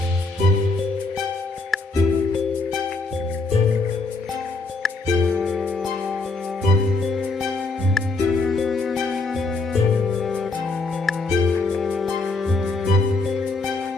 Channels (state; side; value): quieter; right; 3.5 dB